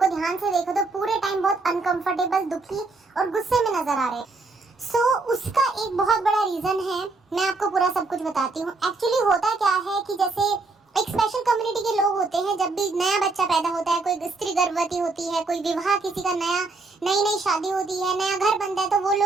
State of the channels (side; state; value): left; quieter; 3.6 dB